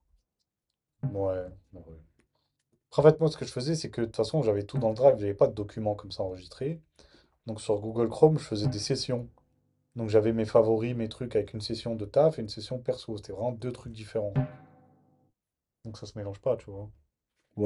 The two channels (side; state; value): both; identical; correlation 1.00